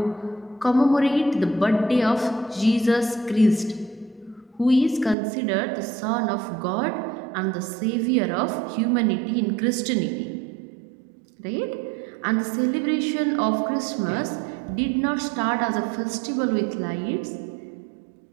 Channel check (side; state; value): left; drops out; at 5.2 s